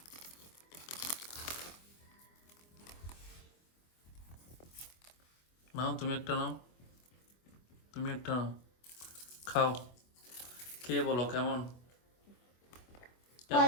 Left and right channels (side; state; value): right; late; 24 ms